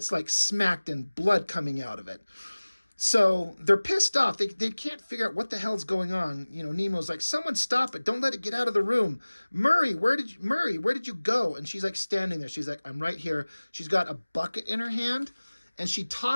like smacked and blood coming out of it. So they're pissed off. They can't figure out what the hell's going on. You know, Nemo's like, someone stop it. Don't let it get out of the room. Murray, where did you go? And she's like standing there. She's like, I'm right here. She's got a bucket in her hand. And she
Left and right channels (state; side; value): inverted; both; correlation -1.00